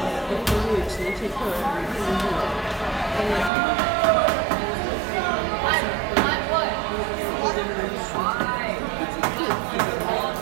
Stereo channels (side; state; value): left; drops out; at 3.5 s